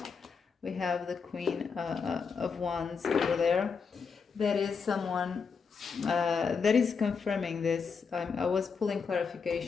We have the Queen of Wands over there. That is someone that is confirming this. I was pulling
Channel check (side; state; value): right; quieter; 5.6 dB